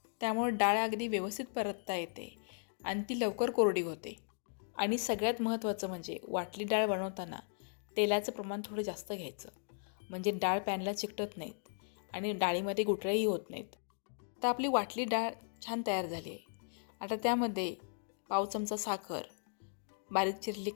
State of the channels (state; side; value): silent; right; digital silence